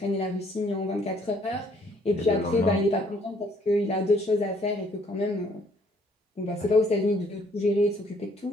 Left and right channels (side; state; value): both; normal; correlation 0.64